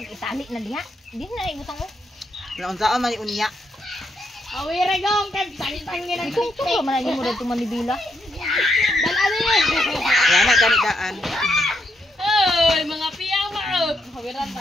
itali na diha. Di na ibutang oh. Naunsaon man unya. Awire gong kan tangin ang Kung tulo man lagi mo dito manibila. dalali. Wala na gani daan. Oy, mga piyama.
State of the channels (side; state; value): both; normal; correlation 0.78